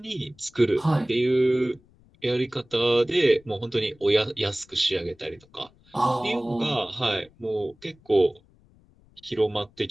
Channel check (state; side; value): noise; left; rumble, 30 dB below the sound